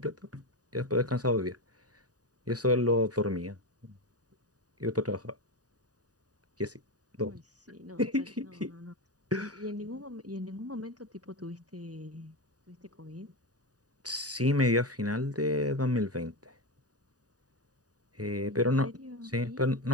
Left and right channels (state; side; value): late; left; 0.68 ms